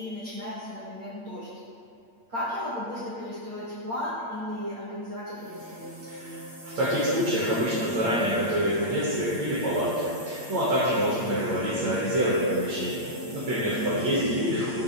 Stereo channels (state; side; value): late; left; 8.7 ms